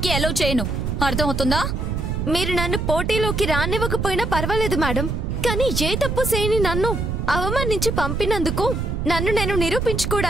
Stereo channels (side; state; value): right; noise; rumble, 1 dB below the sound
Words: అలౌ చేయను. అర్థమవుతుందా? మీరు నన్ను పోటీలోకి రానివ్వకపోయినా పర్వాలేదు మేడం. కానీ ఏ తప్పు చేయని నన్ను అవమానించి పంపినందుకు నన్ను నేను